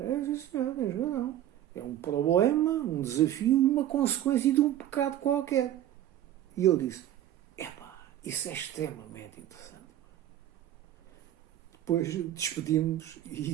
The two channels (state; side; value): quieter; left; 12.3 dB